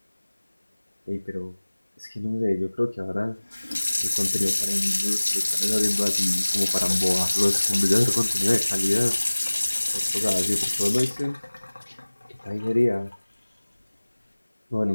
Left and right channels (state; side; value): inverted; both; correlation -1.00